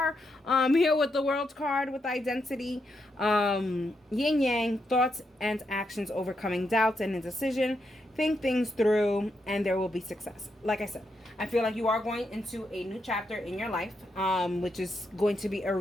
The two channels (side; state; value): both; normal; correlation 0.82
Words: here with the World card with identity, yin yang, thoughts and actions, overcoming doubts and indecision. Think things through and there will be success. Like I said, I feel like you are going into a new chapter in your life, which is going to be a